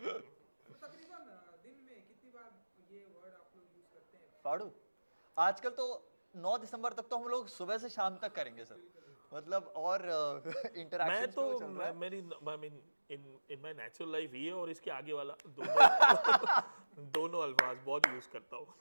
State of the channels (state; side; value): inverted; both; correlation -1.00